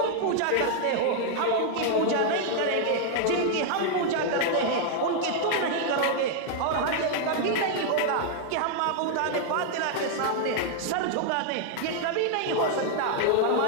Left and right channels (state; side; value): different; both; correlation 0.00